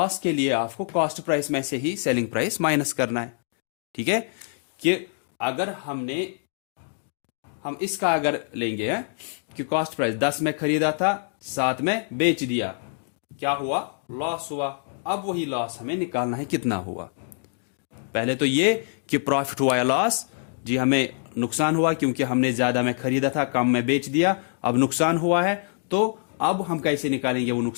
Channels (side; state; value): right; silent; digital silence